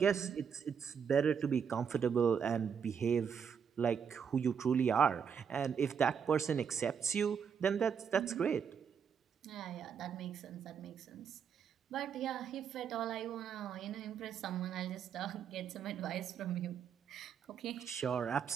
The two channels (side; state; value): left; quieter; 7.1 dB